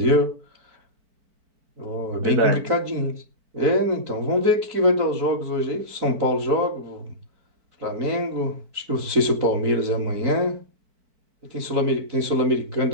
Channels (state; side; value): late; left; 4.5 ms